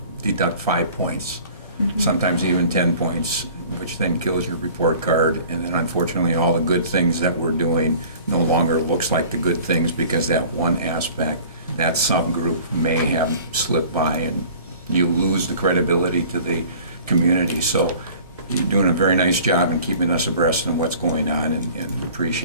deduct 5 points, sometimes even 10 points, which then kills your report card. And then unfortunately, all the good things that we're doing no longer looks like the good things, because that one aspect, that subgroup may have slipped by, and you lose the credibility to the community. So you're doing a very nice job in keeping us abreast of what's going on, and we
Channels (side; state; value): both; inverted; correlation -0.47